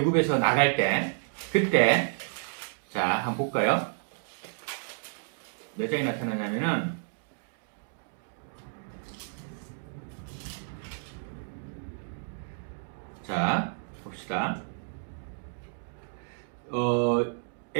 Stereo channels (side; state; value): left; silent; digital silence